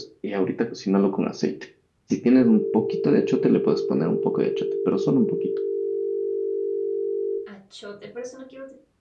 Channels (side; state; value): both; identical; correlation 1.00